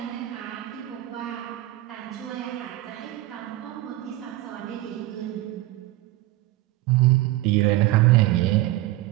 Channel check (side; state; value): left; quieter; 16.9 dB